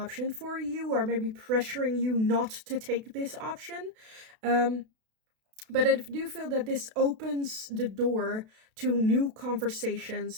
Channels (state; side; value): late; left; 32 ms